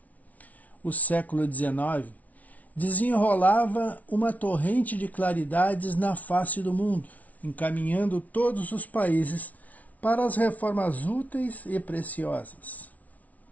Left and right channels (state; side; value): late; right; 0.071 ms